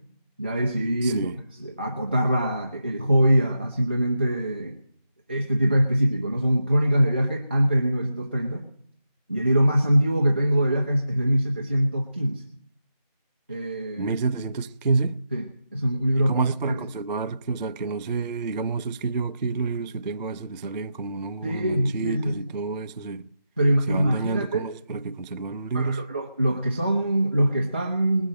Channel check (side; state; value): both; inverted; correlation -0.86